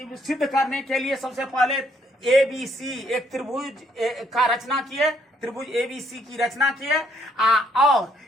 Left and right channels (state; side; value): normal; both; correlation 0.69